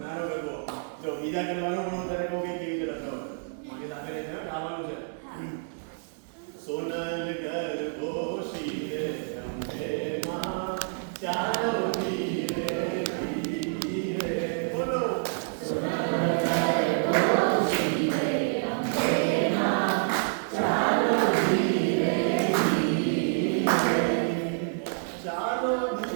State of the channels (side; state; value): left; silent; 59 dB below the other